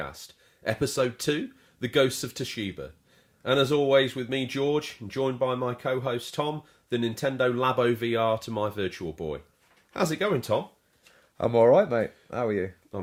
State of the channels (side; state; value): both; identical; correlation 1.00